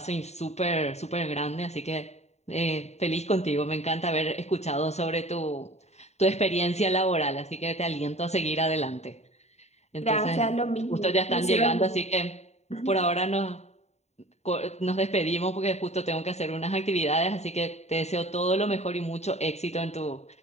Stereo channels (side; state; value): right; late; 0.32 ms